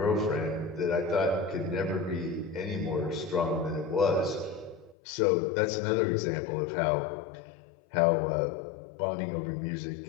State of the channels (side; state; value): right; drops out; at 5.0 s